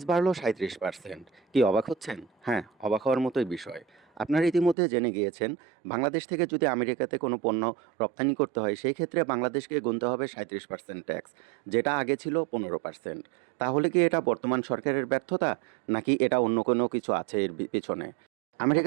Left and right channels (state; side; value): drops out; left; at 4.8 s